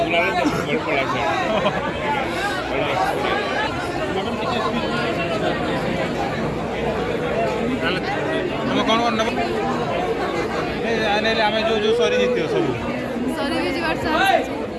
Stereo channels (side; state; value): both; identical; correlation 1.00